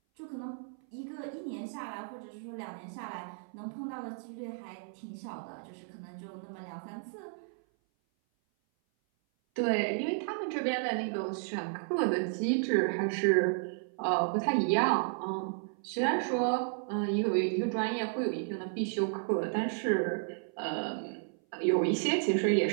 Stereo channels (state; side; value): silent; left; 56 dB below the other